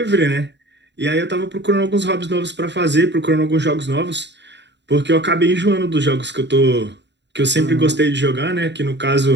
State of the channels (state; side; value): late; left; 0.51 ms